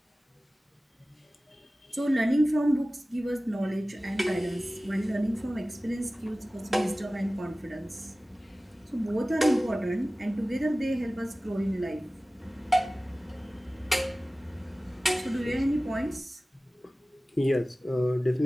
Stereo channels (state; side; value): normal; both; correlation 0.97